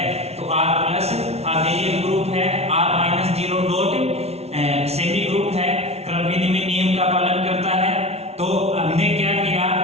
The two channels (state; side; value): late; left; 0.31 ms